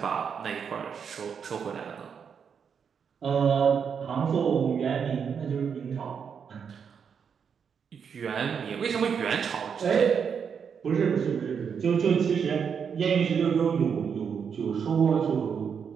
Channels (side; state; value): left; quieter; 6.9 dB